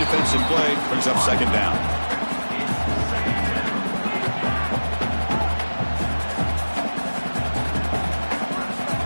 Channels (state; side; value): inverted; both; correlation -1.00